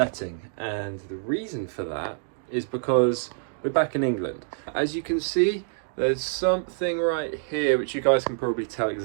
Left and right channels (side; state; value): left; silent; digital silence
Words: and the reason for that is because we're back in England. As you can see, there's something right here which you guys can probably tell